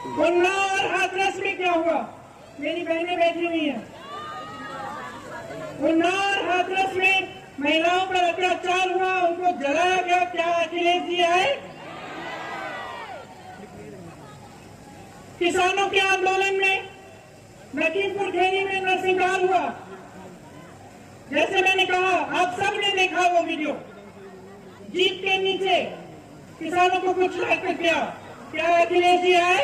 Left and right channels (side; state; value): both; identical; correlation 1.00